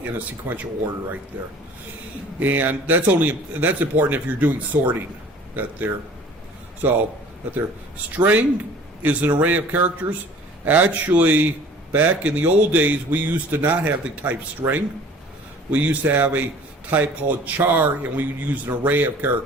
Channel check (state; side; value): normal; both; correlation 0.48